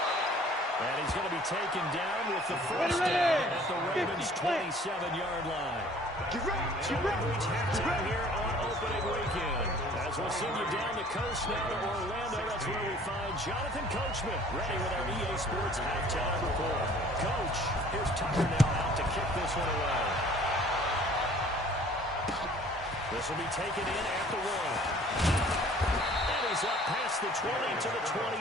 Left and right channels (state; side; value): normal; both; correlation 0.53